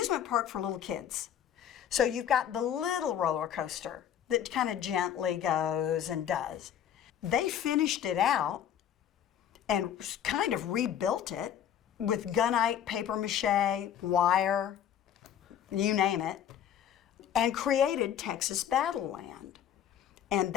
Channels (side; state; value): right; quieter; 9.8 dB